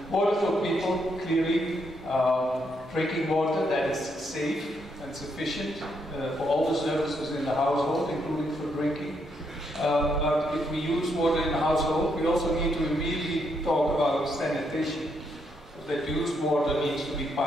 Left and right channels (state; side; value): normal; both; correlation 0.76